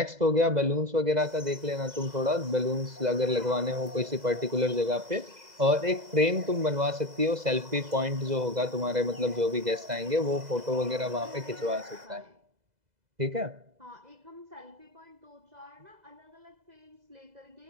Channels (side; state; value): left; late; 2.0 ms